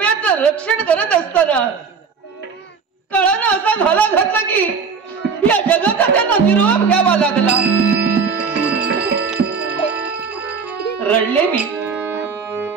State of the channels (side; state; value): left; quieter; 5.6 dB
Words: रक्षण करत असताना काळानं असा घाला घातला की या जगाचा त्यांना निरोप घ्यावा लागला. रडले मी,